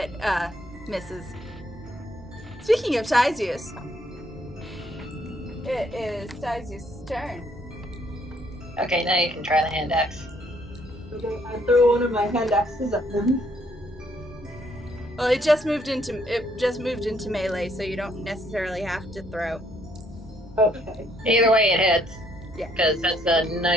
misses. Speaking of Tyzius, it is Tyzius' turn. Okay, now you can try the hand axe. Okay, I throw one of my hand axes at them. Well, it just moved into melee, so you don't necessarily have to throw. Okay. Either way, it hits. Yeah. Because that's a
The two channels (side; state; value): both; normal; correlation 0.68